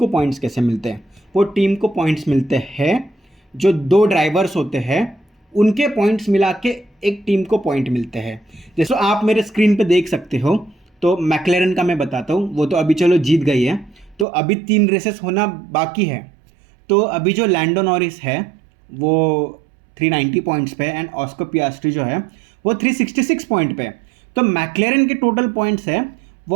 पॉइंट्स कैसे मिलते हैं? वो टीम को पॉइंट्स मिलते हैं जो 2 ड्राइवर्स होते हैं उनके पॉइंट्स मिला के एक टीम को पॉइंट मिलते हैं। जैसे आप मेरे स्क्रीन पे देख सकते हो, तो मैक्लेरन का मैं बताता हूँ, वो तो अभी चलो जीत गई है, तो अभी 3 रेसेस होना बाकी है। तो अभी जो लैंडो नॉरिस है वो 390 पॉइंट्स पे एंड ऑस्कर पियास्ट्री जो है वो 366 पॉइंट पे। तो मैक्लेरन के टोटल पॉइंट्स है वो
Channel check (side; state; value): left; drops out; at 14.2 s